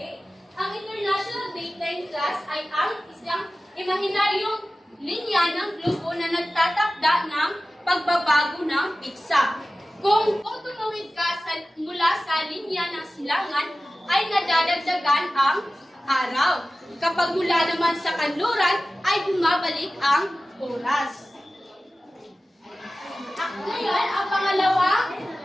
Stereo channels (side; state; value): both; normal; correlation 0.96